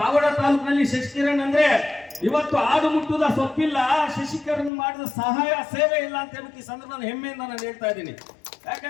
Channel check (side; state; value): right; drops out; at 4.7 s